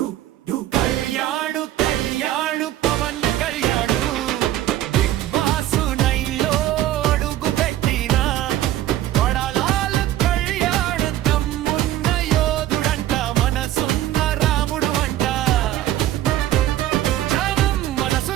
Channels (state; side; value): quieter; left; 13.6 dB